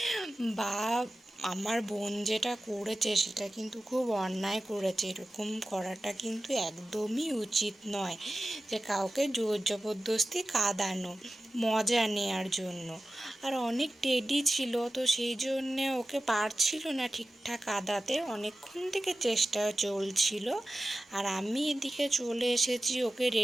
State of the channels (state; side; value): normal; both; correlation 0.94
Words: বা আমার বোন যেটা করেছে সেটা কিন্তু খুব অন্যায় করেছে। এরকম করাটা কিন্তু একদমই উচিত নয়, যে কাউকে জোর জবরদস্তি কাঁদানো মজা নেওয়ার জন্য। আর অনেক টেডি ছিল, তো সেই জন্যে ওকে পারছিল না ঠিকঠাক কাঁদাতে, অনেকক্ষণ থেকে চেষ্টা চলছিল। আর আমি এদিকে চলে এসেছি ওকে